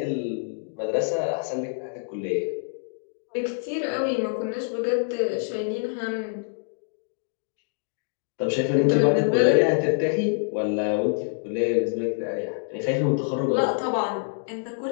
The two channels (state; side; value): silent; right; digital silence